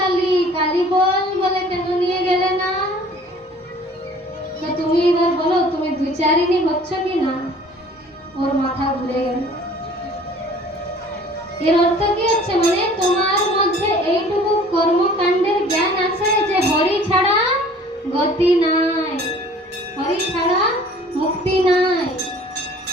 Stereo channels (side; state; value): both; normal; correlation 0.50